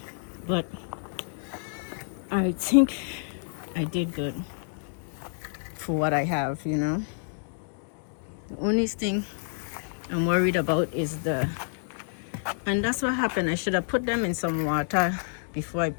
But I think I did good for what I have, you know. The only thing I'm worried about is and that's what happened. I should have put them in some water before I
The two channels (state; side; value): silent; right; digital silence